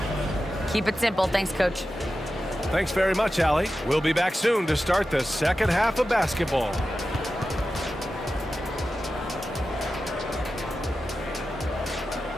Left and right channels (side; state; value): both; normal; correlation 0.93